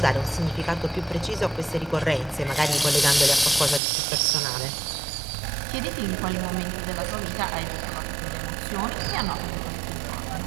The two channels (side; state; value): left; drops out; at 3.8 s